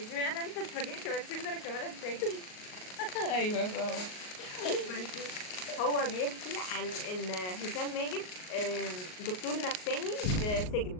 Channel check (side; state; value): right; late; 38 ms